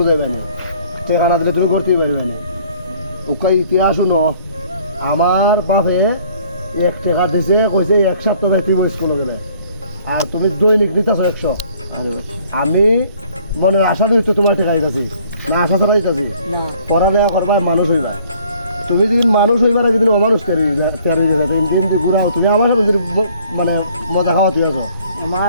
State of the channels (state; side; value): inverted; both; correlation -0.59